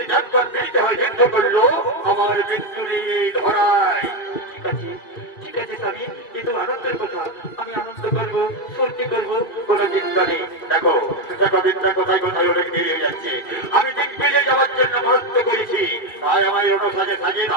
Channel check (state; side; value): late; right; 2.4 ms